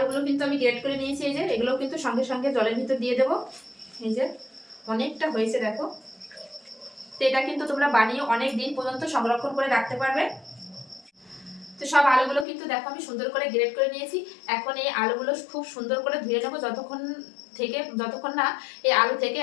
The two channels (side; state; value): right; drops out; at 12.5 s